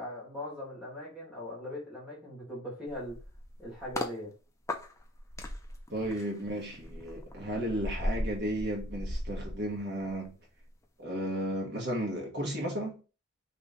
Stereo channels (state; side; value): normal; both; correlation 0.52